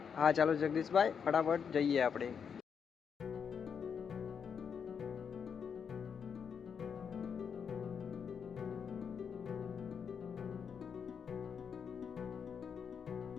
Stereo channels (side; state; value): right; quieter; 6.9 dB